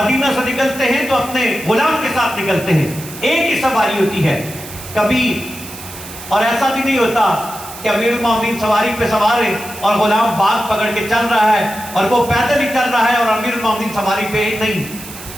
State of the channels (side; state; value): right; noise; hiss, 14 dB below the sound